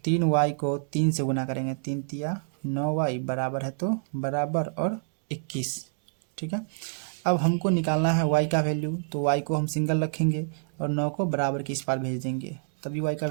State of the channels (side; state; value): left; silent; digital silence